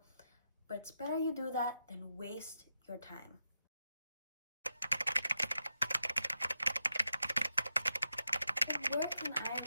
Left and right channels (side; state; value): both; inverted; correlation -0.86